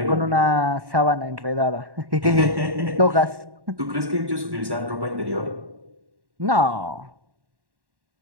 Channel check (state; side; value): late; left; 1.1 ms